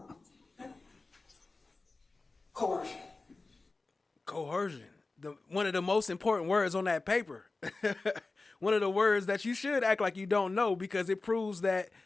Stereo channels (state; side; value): quieter; right; 3.5 dB